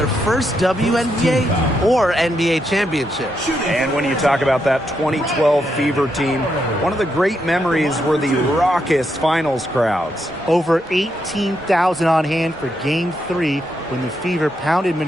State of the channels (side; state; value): both; normal; correlation 0.81